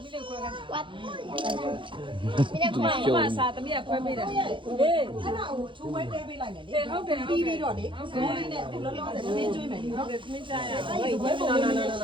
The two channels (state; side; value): late; left; 0.24 ms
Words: ူ မစားသမီးကခွဲပေးတယ်ဟေး အဲ့ဒါကိုချိုးဝဲတဲပေးလိုက်မယ်လေ ဟုတ်တယ် ပြီးပြီးတော့လေဇိုးလေးနဲ့လောလောဆယ်နင်းကျွေးမယ်လေနော် သမီးစားရ အဲ့ဒီဝဲပုံလေးနဲ့ရှ